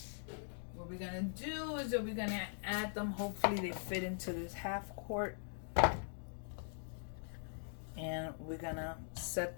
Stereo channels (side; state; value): right; silent; digital silence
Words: What we're gonna do is that we're gonna add them. Hopefully they fit into this half quart. And we're gonna set